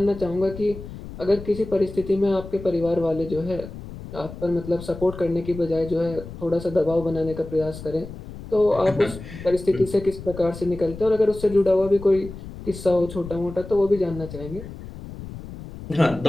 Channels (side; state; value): left; noise; rumble, 12 dB below the sound